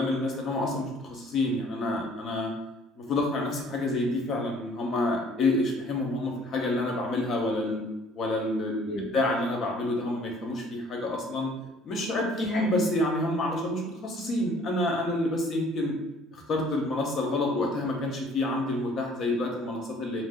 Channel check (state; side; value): normal; both; correlation 0.56